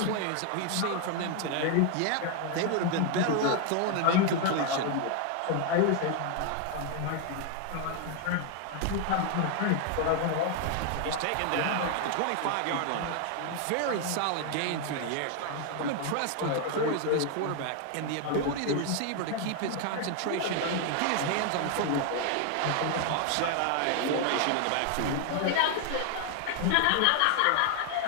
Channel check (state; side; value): different; both; correlation 0.00